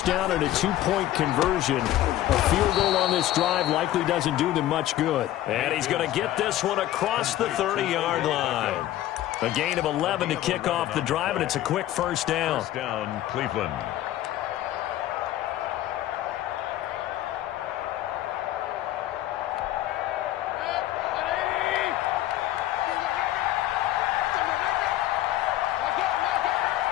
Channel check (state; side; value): quieter; right; 14.0 dB